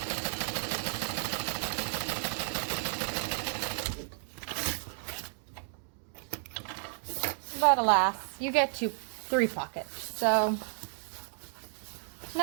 But alas, you get 3 pockets. So,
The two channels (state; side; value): silent; left; 56 dB below the other